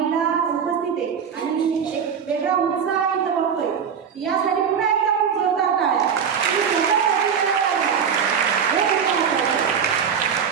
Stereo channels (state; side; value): quieter; left; 7.1 dB